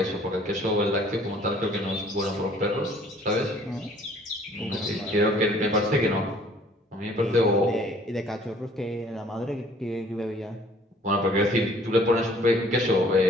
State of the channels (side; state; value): both; normal; correlation 0.56